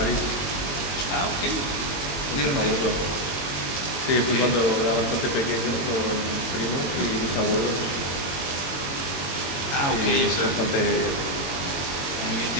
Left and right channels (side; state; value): right; late; 21 ms